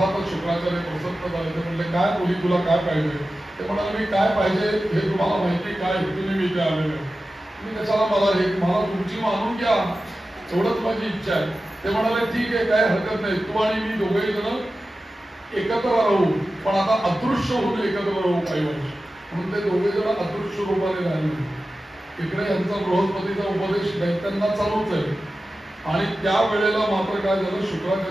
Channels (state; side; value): normal; both; correlation 0.94